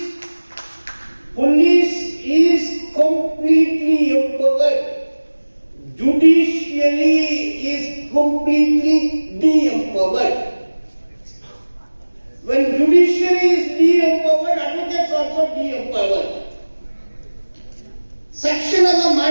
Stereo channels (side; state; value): both; inverted; correlation -1.00